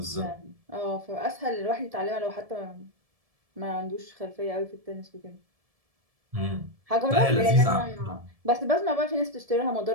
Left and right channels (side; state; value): left; late; 1.7 ms